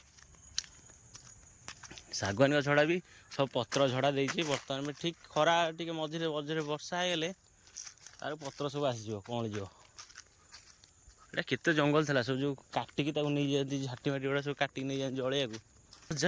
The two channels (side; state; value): both; identical; correlation 1.00